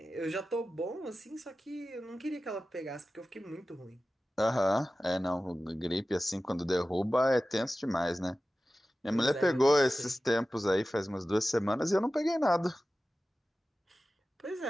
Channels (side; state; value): both; normal; correlation 0.95